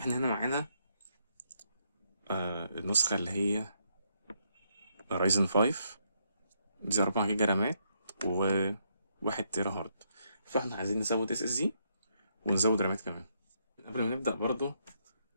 هنا معانا النسخة اللي هي رايزن 5، دي 4 جيجا رامات و1 تيرا هارد. فاحنا عايزين نزود اس اس دي ونزود رامات كمان. قبل ما نبدأ برضو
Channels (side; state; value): both; inverted; correlation -0.76